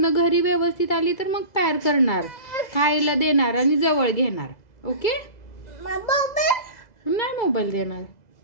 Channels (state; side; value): late; right; 2.0 ms